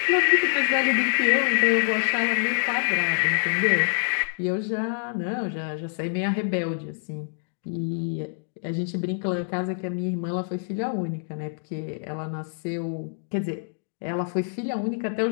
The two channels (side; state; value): right; silent; digital silence